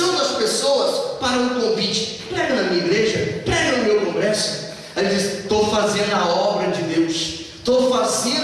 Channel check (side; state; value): both; identical; correlation 1.00